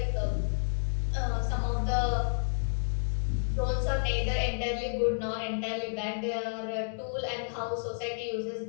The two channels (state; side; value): silent; right; digital silence